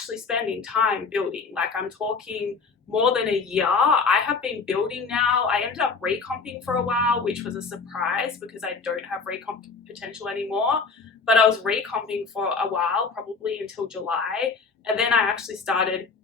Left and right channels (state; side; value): quieter; right; 4.7 dB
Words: spending time building. Like I'm talking more than a year. I have been building now. I ended up recomping for a while, which was a surprise because I don't have recomp potential anymore. But I was recomping for a while, probably until July. And then I actually started